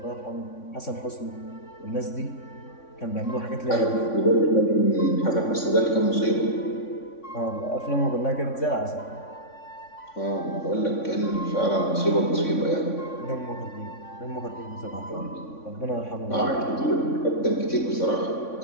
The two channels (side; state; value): right; late; 3.6 ms